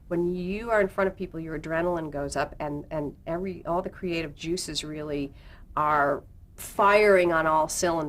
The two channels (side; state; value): both; identical; correlation 1.00